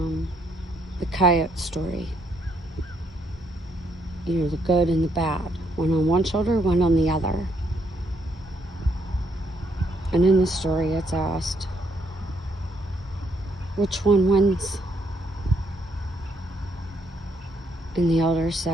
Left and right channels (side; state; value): both; normal; correlation 0.72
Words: coyote story. You know, the good and the bad. One on one shoulder, one on the other. And in the story, it's asked, which one wins? And the elder